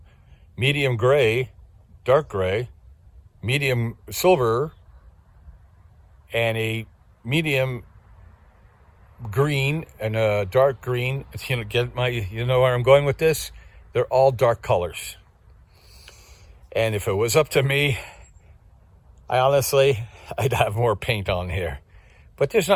medium gray, dark gray, medium silver, and a medium green and a dark green, you know where I'm going with this? They're all dark colors. And if it was up to me, I'd have more paint on here. But there's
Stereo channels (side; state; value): both; identical; correlation 1.00